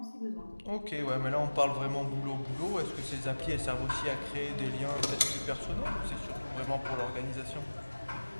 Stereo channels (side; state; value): both; inverted; correlation -1.00